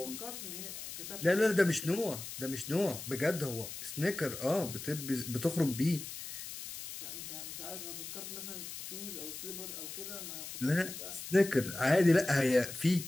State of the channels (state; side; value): noise; left; hiss, 9 dB below the sound